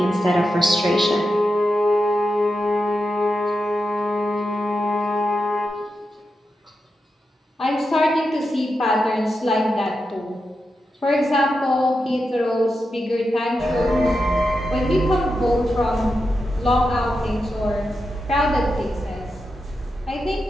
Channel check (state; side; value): normal; both; correlation 0.88